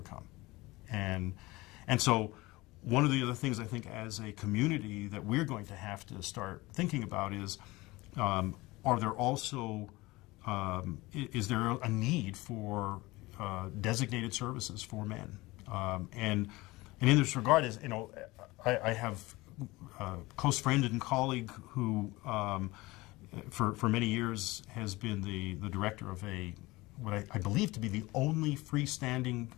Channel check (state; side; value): quieter; right; 21.1 dB